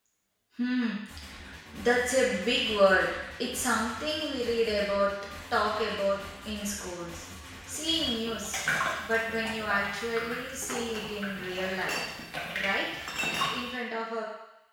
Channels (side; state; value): both; identical; correlation 1.00